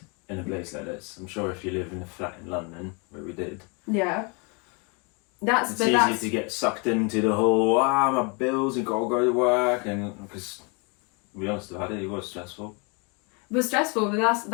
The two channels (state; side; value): quieter; right; 32.8 dB